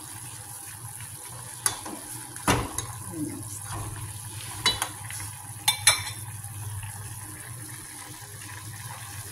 ayan yung isda.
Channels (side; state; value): both; normal; correlation 0.97